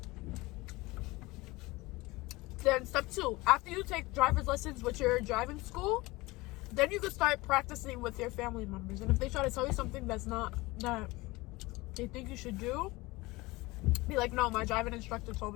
Then step 2, after you take driver's lessons with your driving school, then you can start practicing with your family members. And if they try to tell you something that's not that they think you should do, be like, no, my driving instructor told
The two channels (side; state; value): right; quieter; 21.8 dB